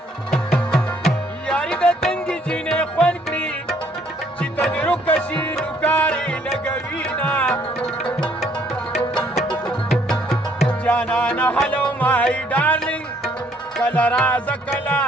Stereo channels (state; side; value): normal; both; correlation 0.65